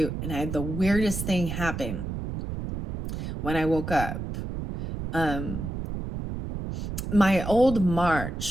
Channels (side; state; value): right; noise; rumble, 5 dB below the sound